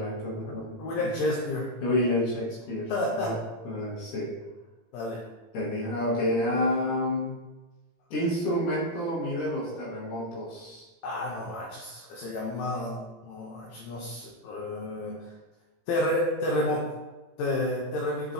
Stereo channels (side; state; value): right; late; 17 ms